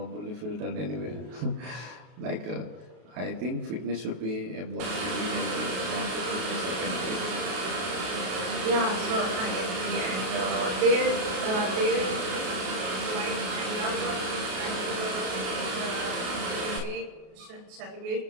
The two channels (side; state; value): left; late; 33 ms